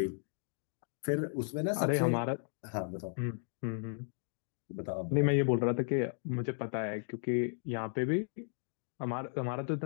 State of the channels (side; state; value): right; silent; digital silence